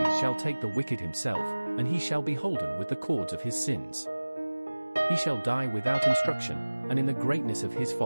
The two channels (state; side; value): inverted; both; correlation -1.00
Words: shall take the wicked himself, and he shall be holden with the cords of his sins. He shall die without instruction, and in the greatness of his